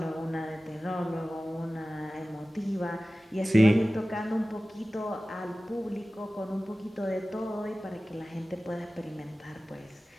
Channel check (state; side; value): normal; both; correlation 0.97